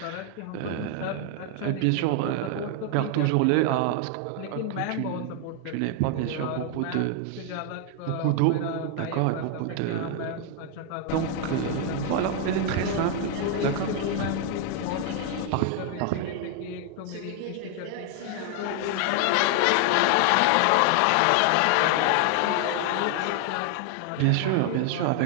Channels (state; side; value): different; both; correlation 0.00